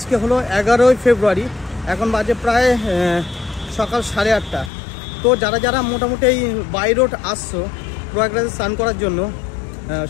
হলো 11 ফেব্রুয়ারি, এখন বাজে প্রায় সকাল 8:30। তো যারা যারা মোটামুটি এই বাই রোড আসছো প্রয়াগরাজে স্নান করার জন্য,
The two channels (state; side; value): drops out; right; at 4.7 s